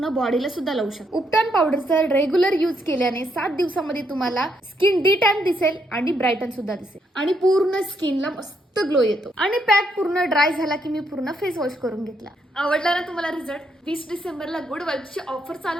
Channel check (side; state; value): both; normal; correlation 0.76